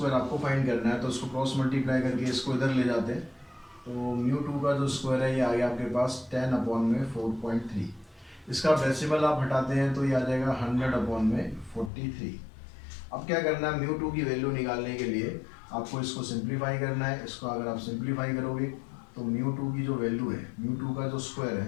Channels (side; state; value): right; drops out; at 11.9 s